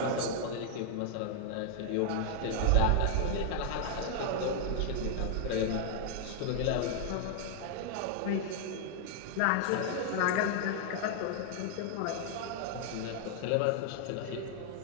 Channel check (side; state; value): both; different; correlation 0.00